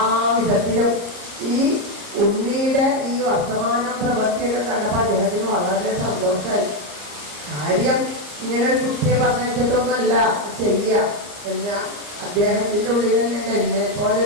വിധത്തിലും ഈ ഉണ്ണിയുടെ ഈ വർത്തമാനം പ്രവൃത്തിയൊക്കെ കണ്ടപ്പോൾ അദ്ദേഹത്തിന് വളരെ സന്തോഷമായി. കാര്യം ഇങ്ങനെ ഒരു കുട്ടിയെ പറഞ്ഞിട്ടൊന്നുമല്ല ചെയ്യുക എന്ന് അദ്ദേഹത്തിൻ്റെ ഉള്ളിൽ തന്നെ എന്നെ പോലെ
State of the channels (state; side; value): late; left; 34 ms